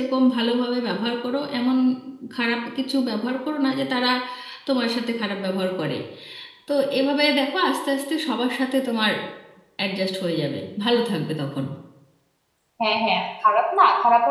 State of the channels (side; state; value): both; identical; correlation 1.00